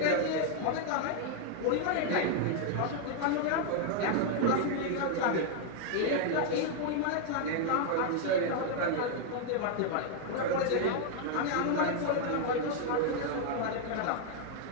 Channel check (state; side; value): different; both; correlation 0.00